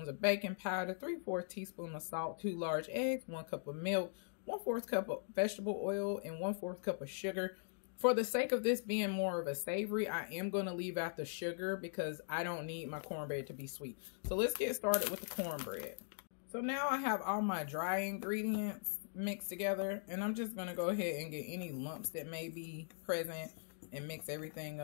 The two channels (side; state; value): right; silent; digital silence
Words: of baking powder, 3/4 teaspoons of salt, 2 large eggs, 1 cup of milk, 1/4 cup of vegetable oil, and 1/4 cup of sugar. For the sake of this being more of a savory, I am going to leave out the sugar because I don't need my cornbread to be sweet. So let's get started with the cornbread. So now I have all my dry ingredients mixed together, and I'm just going to go ahead and get any lumps that may be present and mix everything